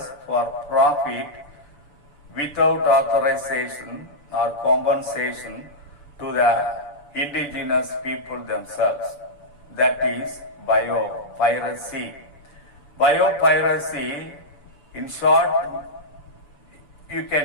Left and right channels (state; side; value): late; right; 7.0 ms